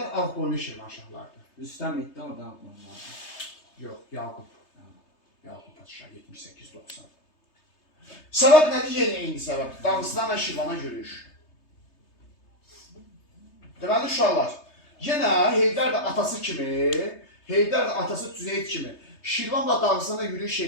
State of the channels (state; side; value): late; right; 3.3 ms